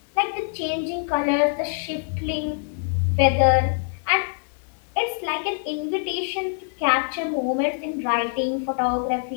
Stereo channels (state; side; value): silent; right; 62 dB below the other